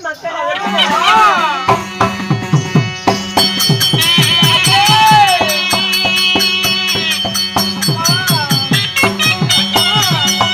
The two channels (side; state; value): both; identical; correlation 1.00